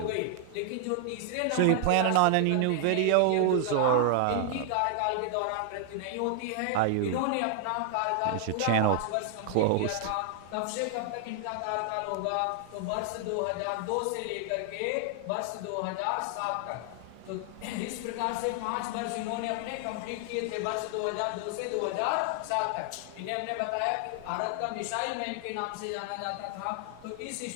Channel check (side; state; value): both; different; correlation 0.00